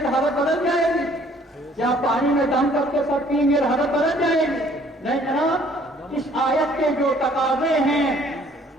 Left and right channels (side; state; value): both; normal; correlation 0.58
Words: تو حالت بدل جائے گی؟ کیا پانی میں دم کر کے سب پئیں گے حالت بدل جائے گی؟ نہیں جناب، اس آیت کے جو تقاضے ہیں